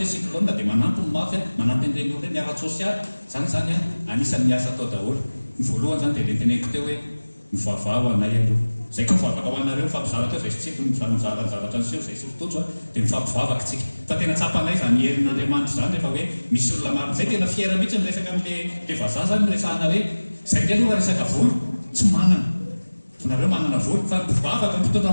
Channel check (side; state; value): both; inverted; correlation -1.00